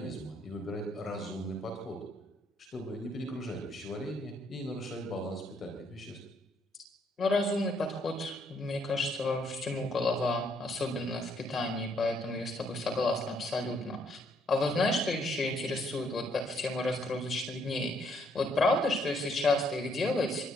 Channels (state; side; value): normal; both; correlation 0.70